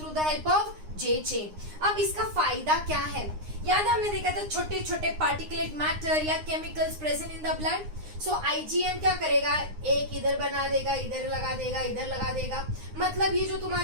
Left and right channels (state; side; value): late; left; 9.7 ms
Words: the help of J chain. अब इसका फायदा क्या है? याद है हमने देखा था छोटे छोटे पार्टिकुलेट मैटर या chemicals present in the blood. So IgM क्या करेगा? एक इधर बना देगा, इधर लगा देगा, इधर लगा देगा. मतलब ये जो